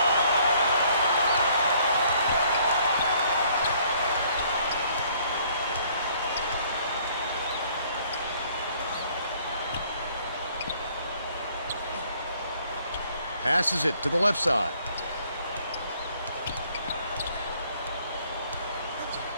Passes it to the left side.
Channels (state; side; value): inverted; both; correlation -0.62